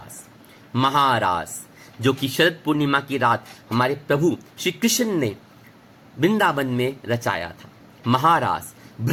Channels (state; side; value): identical; both; correlation 1.00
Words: महारास जो कि शरद पूर्णिमा की रात हमारे प्रभु श्री कृष्ण ने वृंदावन में रचाया था। महारास